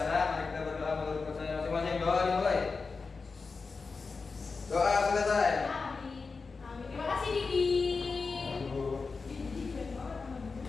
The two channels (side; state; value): right; quieter; 4.5 dB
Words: mari kita berdoa menurut percaya masing-masing. Doa dimulai. Doa selesai. Amin. Amin. Terima kasih Didi.